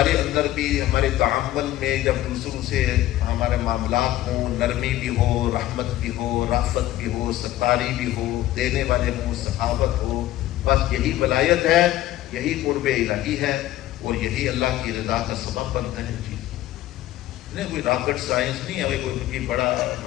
اندر بھی ہمارے تعامل میں جب دوسروں سے ہمارے معاملات ہوں، نرمی بھی ہو، رحمت بھی ہو، رافت بھی ہو، ستاری بھی ہو، دینے والے ہوں، سخاوت ہو، بس یہی ولایت ہے، یہی قرب الہی ہے، اور یہی اللہ کی رضا کا سبب بنتا ہے۔ چیز نہیں کوئی راکٹ سائنس نہیں ہے، کوئی بڑا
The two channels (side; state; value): right; quieter; 14.6 dB